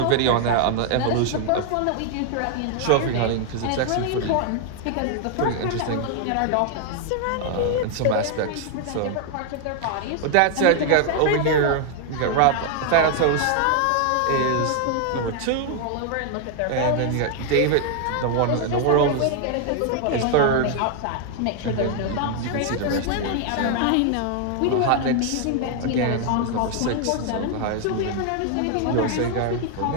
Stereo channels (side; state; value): both; different; correlation 0.00